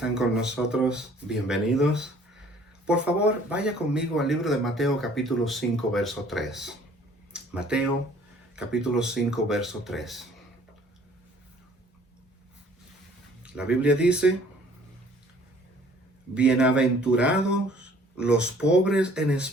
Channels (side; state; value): both; normal; correlation 0.55